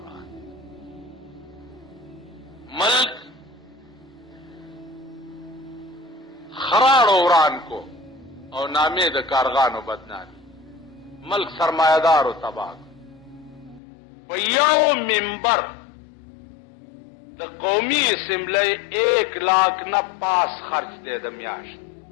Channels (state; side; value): drops out; right; at 13.8 s